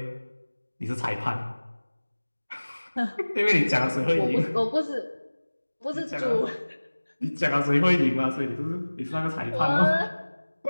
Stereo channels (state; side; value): inverted; both; correlation -1.00